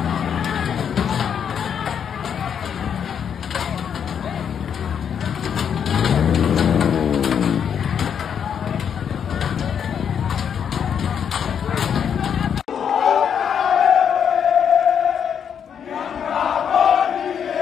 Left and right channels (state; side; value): quieter; right; 7.9 dB